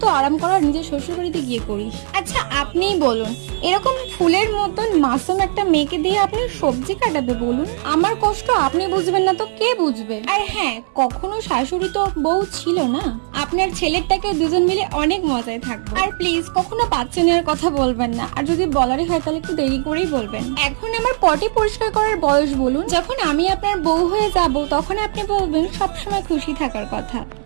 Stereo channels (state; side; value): silent; left; 63 dB below the other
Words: আরাম করার নিজের শ্বশুর বাড়িতে গিয়ে করিস। আচ্ছা আপনিই বলুন, এরকম ফুলের মতন মাসুম একটা মেয়েকে দিয়ে আপনি সবজি কাটাবে বলুন? আমার কষ্ট আপনি বুঝবেন না তো কে বুঝবে? আর হ্যাঁ, কখনো শাশুড়ি তো বউ ছিল না। আপনার ছেলেরটাকে দুজন মিলে অনেক মজায় থাকবো। আর প্লিজ কখনো বাচ্চা নেওয়ার কথা বলবেন না, আর যদি বলারই হয় তাহলে একটু দেরি করেই বলবেন। এখন আমার পটি পরিষ্কার করার বয়স বলুন? যখন আমি আপনার বউ হয়ে যাব তখন আপনি বলবেন সবসময় খুশি থাকার কথা।